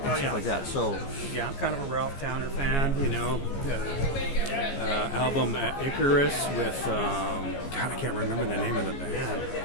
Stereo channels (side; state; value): right; late; 14 ms